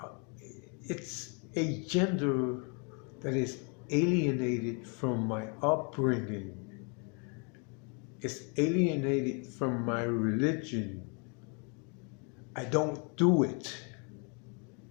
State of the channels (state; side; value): quieter; right; 36.2 dB